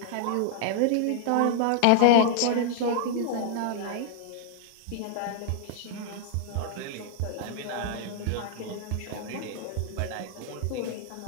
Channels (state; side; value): different; both; correlation 0.00